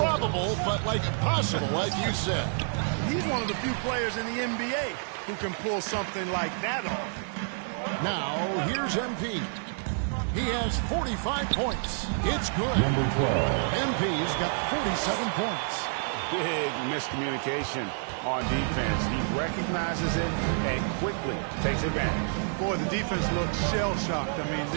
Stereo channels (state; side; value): silent; left; 59 dB below the other